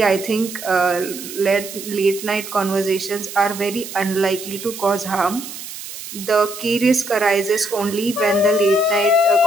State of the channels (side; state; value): right; noise; hiss, 11 dB below the sound